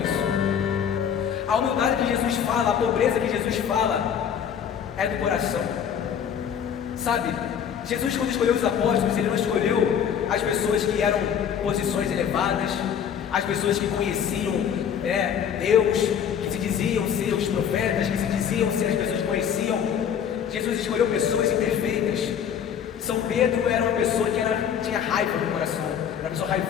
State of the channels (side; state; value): right; quieter; 8.3 dB